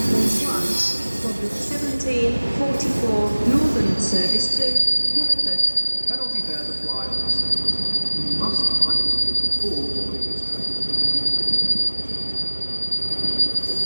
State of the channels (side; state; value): both; inverted; correlation -1.00